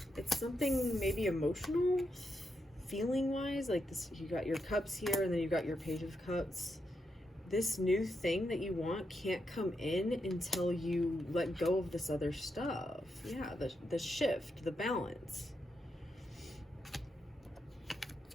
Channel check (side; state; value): both; normal; correlation 0.83